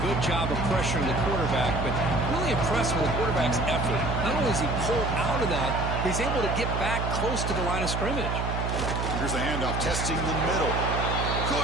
good job of pressuring the quarterback, but really impressed with the quarterback's effort. Not only is he pulled out of that, he's able to get back close to the line of scrimmage. Here's the handoff, testing the middle.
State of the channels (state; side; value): noise; right; hum, 2 dB below the sound